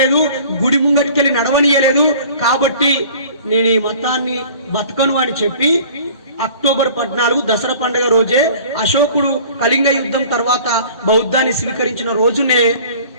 గుడి ముంగటికెళ్ళి నడవనియలేదు, కాబట్టి నేను ఈ మతాన్ని బతకను అని చెప్పి అక్టోబర్ 14 దసరా పండుగ రోజే అశోకుడు కళింగ యుద్ధం తర్వాత బౌద్ధాన్ని స్వీకరించిన రోజునే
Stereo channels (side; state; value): both; inverted; correlation -0.47